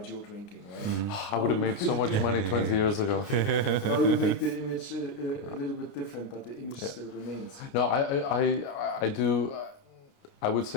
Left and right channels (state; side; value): late; right; 29 ms